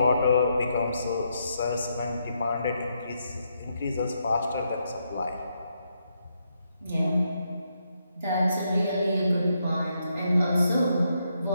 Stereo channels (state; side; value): inverted; both; correlation -0.79